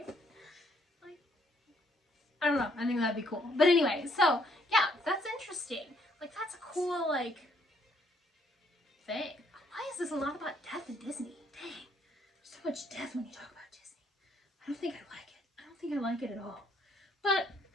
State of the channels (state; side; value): normal; both; correlation 0.69